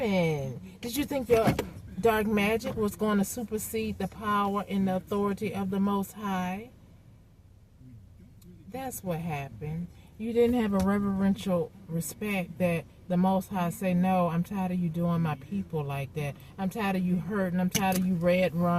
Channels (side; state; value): both; identical; correlation 1.00